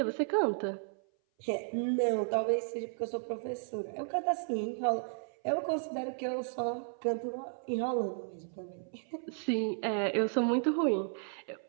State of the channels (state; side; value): silent; left; 55 dB below the other